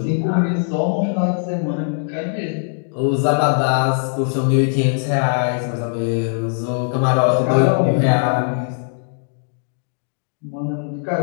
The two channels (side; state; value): right; silent; digital silence